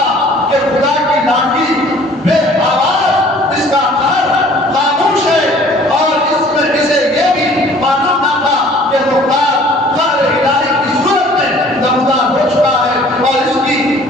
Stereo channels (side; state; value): both; normal; correlation 0.52